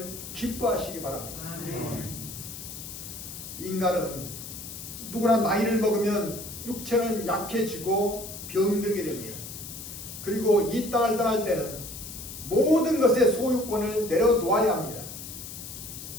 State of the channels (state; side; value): noise; left; hiss, 11 dB below the sound